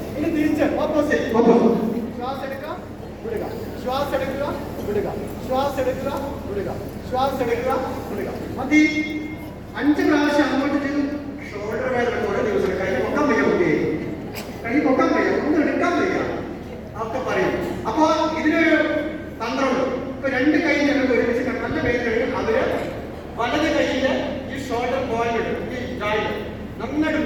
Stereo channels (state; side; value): identical; both; correlation 1.00